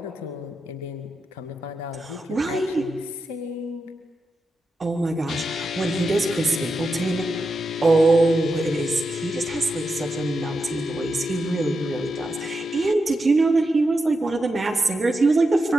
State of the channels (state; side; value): normal; both; correlation 0.87